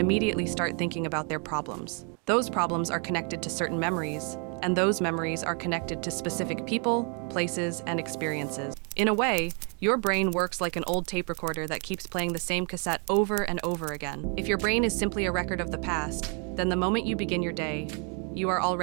start thinking about their problems. Those problems are connected to certain memories, and those memories are connected to specific people, places, and experiences. In a way, your brain works like an old tape recorder that keeps playing the same cassette over and over again. If your brain is simply a record of the past, then the moment you begin your day, you are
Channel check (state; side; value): quieter; left; 38.3 dB